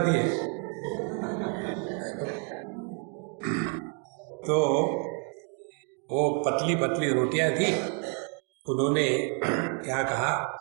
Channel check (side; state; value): left; quieter; 37.6 dB